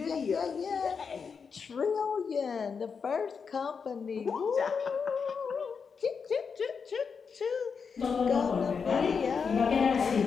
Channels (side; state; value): right; quieter; 5.8 dB